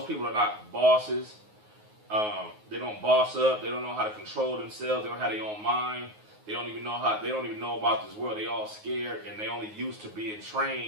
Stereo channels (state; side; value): late; left; 9.5 ms